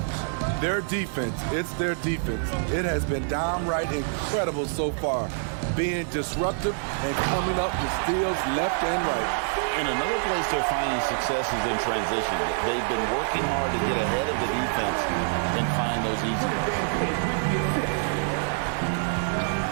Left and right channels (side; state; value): left; silent; 61 dB below the other